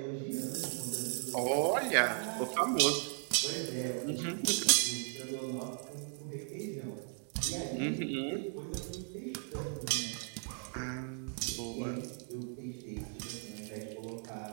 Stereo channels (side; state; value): left; silent; 53 dB below the other